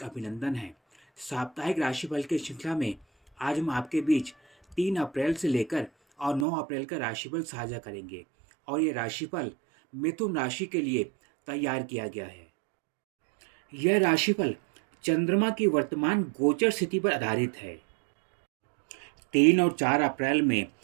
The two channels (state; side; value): drops out; left; at 6.5 s